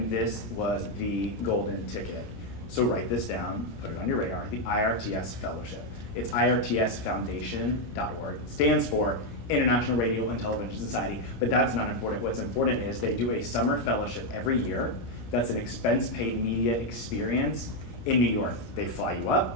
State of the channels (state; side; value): late; right; 17 ms